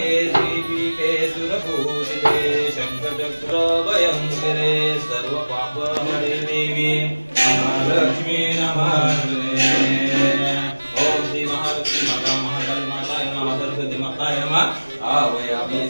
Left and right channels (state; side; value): inverted; both; correlation -1.00